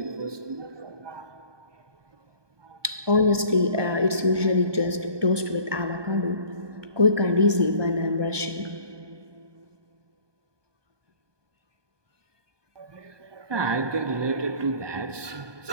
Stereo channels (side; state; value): left; late; 1.2 ms